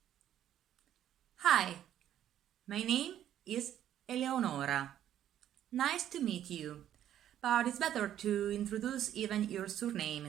Hi, my name is Eleonora. Nice to meet you. But it's better to introduce even your surname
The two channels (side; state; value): left; quieter; 11.2 dB